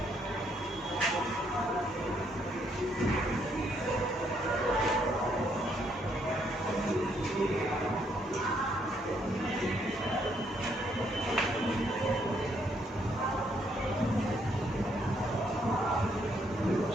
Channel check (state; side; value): normal; both; correlation 0.72